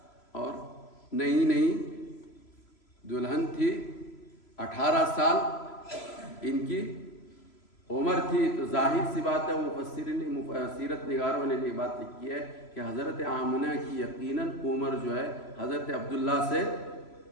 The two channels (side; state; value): right; late; 3.0 ms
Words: اور نئی دلہن تھی. 18 سال ان کی عمر تھی. تو ظاہر سی بات ہے مفسرین سیرت نگاروں نے یہ بات لکھی ہے کہ حضرت آمنہ کی یقیناً عمر جو ہے حضرت عبداللہ سے